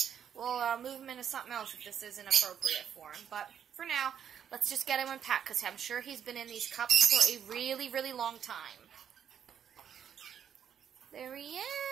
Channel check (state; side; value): quieter; left; 8.7 dB